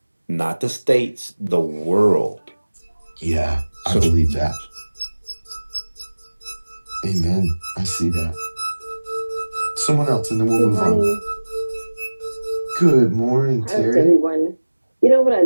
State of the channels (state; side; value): inverted; both; correlation -1.00